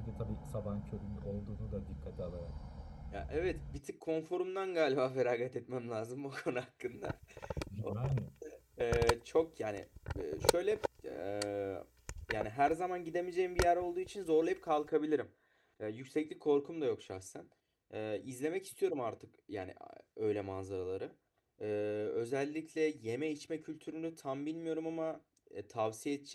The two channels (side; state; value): both; identical; correlation 1.00